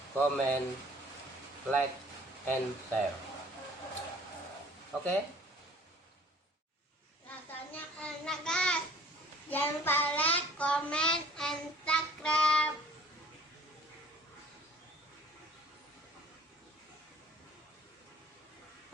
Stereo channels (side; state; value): both; normal; correlation 0.52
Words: comment, like, and share. Oke? Rasanya enak guys. Jangan lupa like, comment, and subscribe. subscribe.